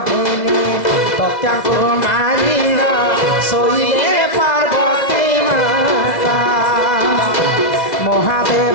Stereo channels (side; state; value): right; late; 2.0 ms